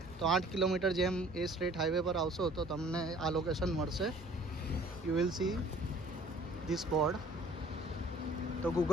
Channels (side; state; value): both; normal; correlation 0.54